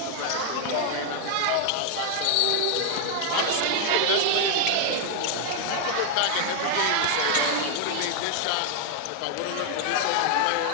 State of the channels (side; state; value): both; different; correlation 0.00